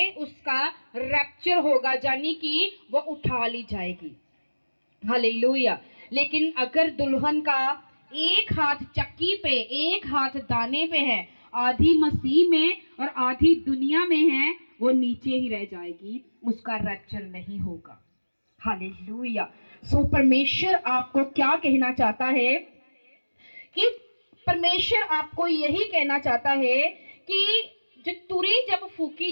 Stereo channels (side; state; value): both; inverted; correlation -1.00